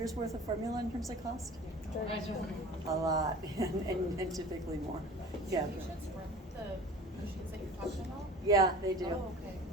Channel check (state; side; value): normal; both; correlation 0.41